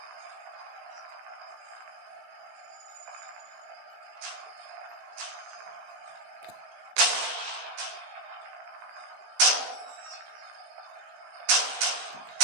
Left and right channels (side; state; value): left; late; 16 ms